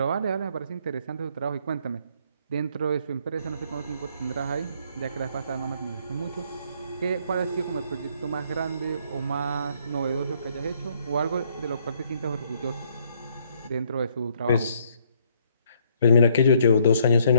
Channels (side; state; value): both; inverted; correlation -0.67